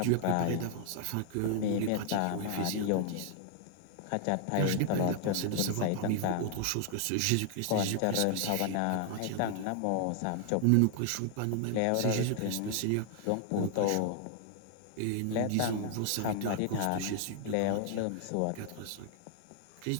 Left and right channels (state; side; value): different; both; correlation 0.00